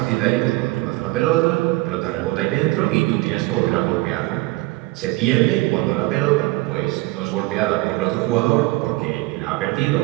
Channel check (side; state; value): left; quieter; 21.1 dB